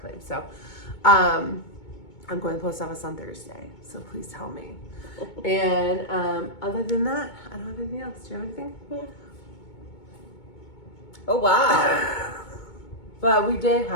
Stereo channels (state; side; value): late; right; 2.2 ms